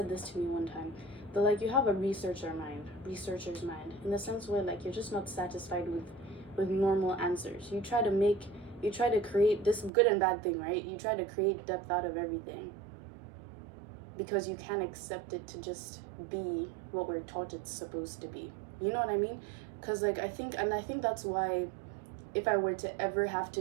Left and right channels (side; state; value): left; drops out; at 9.9 s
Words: this to me one time. But like, you have a researcher's mind, in the sense where like you're just not satisfied with normal answers. You try to create this good and bad thing, right? You try to create depth out of everything because you can't accept it to just be what we're taught it's supposed to be. You know what I mean? Because like I think that's why if I were to ever have to